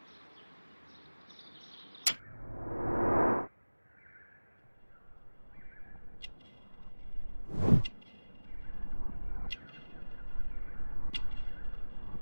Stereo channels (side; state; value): both; inverted; correlation -1.00